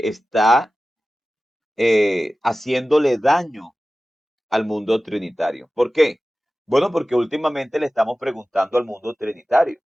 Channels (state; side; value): normal; both; correlation 0.96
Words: está haciéndole daño al mundo trinitario. ¿Por qué? Bueno, porque últimamente le estamos preguntando al mundo trinitario.